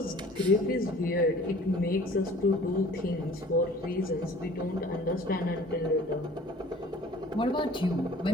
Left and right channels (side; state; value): both; normal; correlation 0.48